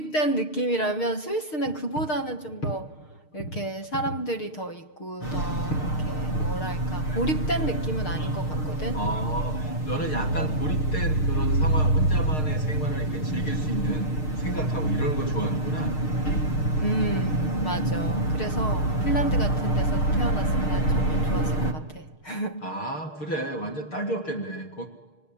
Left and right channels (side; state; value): right; late; 6.5 ms